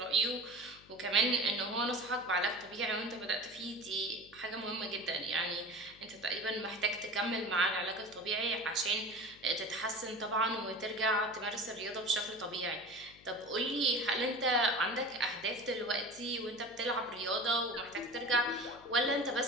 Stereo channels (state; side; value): noise; left; hum, 24 dB below the sound